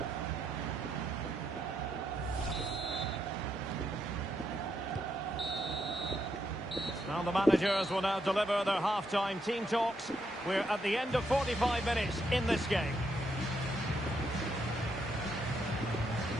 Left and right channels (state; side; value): normal; both; correlation 0.78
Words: Now the managers will now deliver their half-time team talks. We're at the end of 45 minutes in this game.